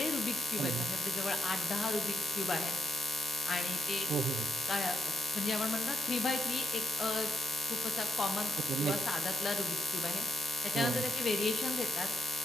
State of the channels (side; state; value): both; normal; correlation 0.79